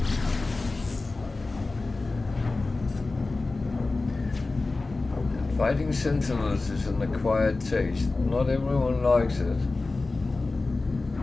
And fighting sentinels is an acquired taste. Not everyone likes it.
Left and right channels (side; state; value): right; quieter; 3.4 dB